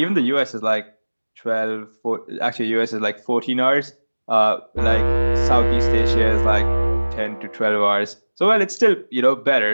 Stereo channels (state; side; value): inverted; both; correlation -1.00